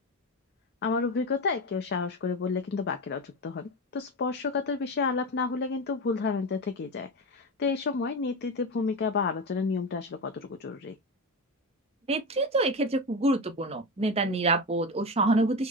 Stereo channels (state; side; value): normal; both; correlation 0.20